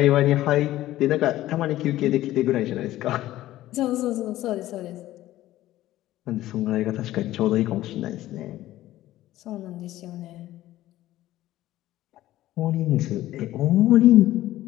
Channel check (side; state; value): right; quieter; 15.0 dB